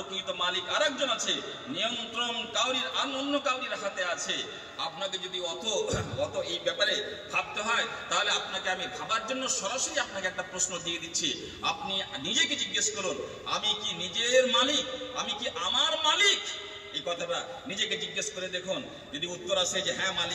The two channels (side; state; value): both; identical; correlation 1.00